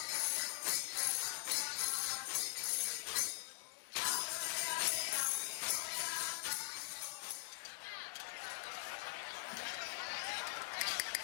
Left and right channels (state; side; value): quieter; right; 34.9 dB